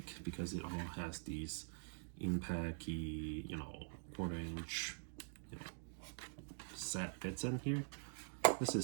because it all has these impact-y, you know, 1/4 inch, you know, set bits in here. This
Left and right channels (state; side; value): silent; left; digital silence